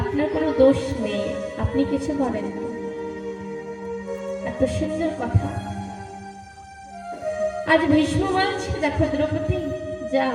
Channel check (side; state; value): both; identical; correlation 1.00